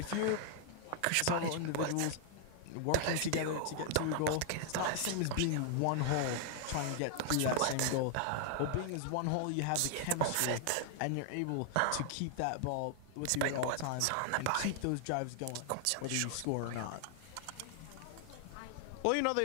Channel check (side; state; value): both; different; correlation 0.00